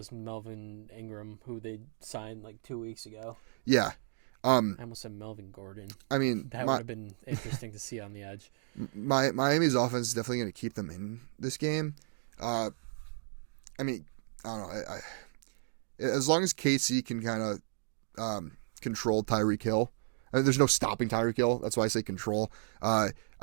Melvin Ingram, who they signed like 2 weeks ago. Yeah. I almost said Melvin Gordon. I mean, that would have been interesting to see on the edge. Miami's offense is definitely going to keep them in this game. I mean, I don't know. As long as KC can kind of control Tyreek Hill, I mean, there's no stopping Tyreek Hill. That's why I say control. I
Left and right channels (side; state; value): left; silent; digital silence